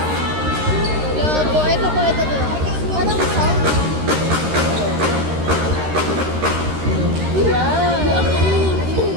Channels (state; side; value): late; left; 13 ms